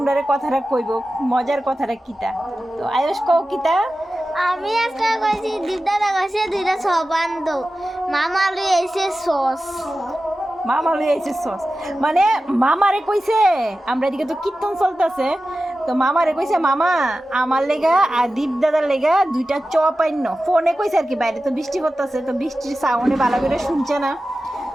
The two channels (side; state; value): both; normal; correlation 0.94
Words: কথাটা কইব, মজার কথাটা কিতা। তো আয়ুষ কও কিতা। আমি আজকে কইছি দিদারা কইছে দুইটা সবান্দ মামা লই এসে সস মামা লই আইছে সস, মানে মামারে কইছে। আমরা এদিকে তো কীর্তন চলতেছে, তো মামারে কইছে মামা আমার লেগা আর দীপ দাদার লেগা দুইটা চপ আইন। ফোনে কইছে আর কি, বাইরে তো বৃষ্টি করতেছে, তো বৃষ্টির সাউন্ডে ভালো করে শুনছে না।